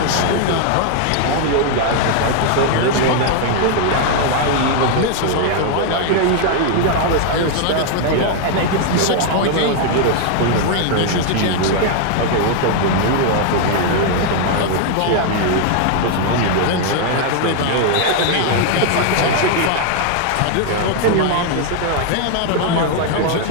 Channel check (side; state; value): both; different; correlation 0.00